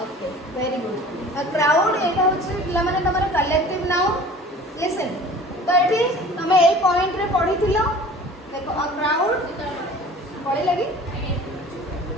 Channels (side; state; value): both; normal; correlation 0.45